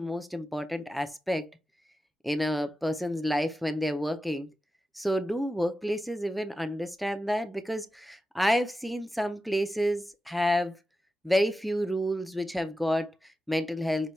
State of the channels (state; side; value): normal; both; correlation 0.92